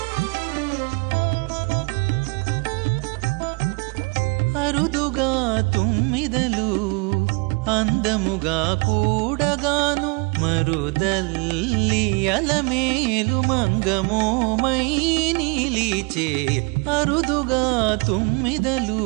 అరుదుగా తుమ్మిదలు అందముగా కూడగాను మరుదల్లి అలమేలు మంగమోమై నీలిచే అరుదుగా తుమ్మిదలు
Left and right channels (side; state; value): left; quieter; 31.1 dB